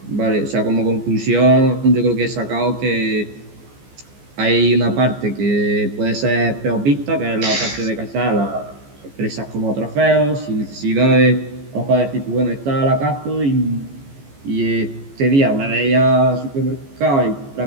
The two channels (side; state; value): left; late; 14 ms